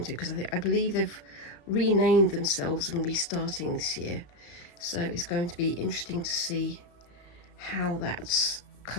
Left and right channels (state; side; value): late; right; 34 ms